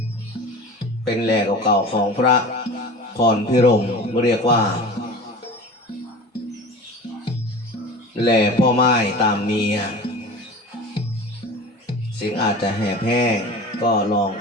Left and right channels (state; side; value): normal; both; correlation 0.36